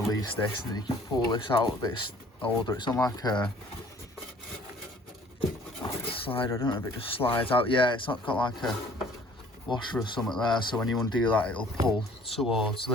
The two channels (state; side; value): normal; both; correlation 0.54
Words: release this, and then you can pull this out a bit older. It's on like a slider, I don't know if it just slides out. Yeah, it's not got like a washer or something there, so when you undo that, it'll pull towards